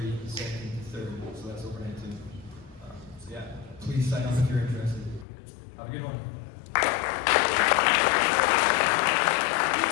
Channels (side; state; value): right; drops out; at 5.2 s